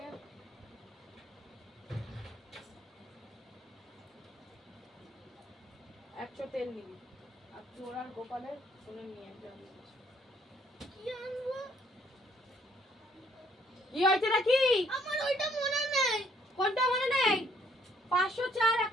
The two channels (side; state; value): both; normal; correlation 0.65